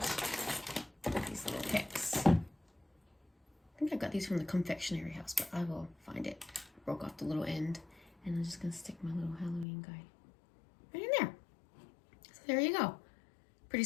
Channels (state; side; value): drops out; right; at 9.7 s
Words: these little picks. I think I got these from the confectionery house, but I will find it. I broke off the little end, and I'm just gonna stick my little Halloween guy right in there. So there you go. Pretty